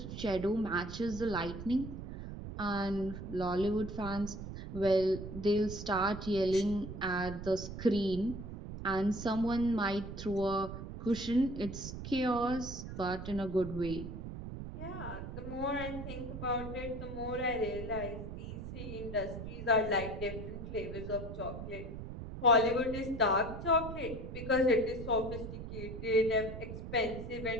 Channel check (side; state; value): right; noise; rumble, 8 dB below the sound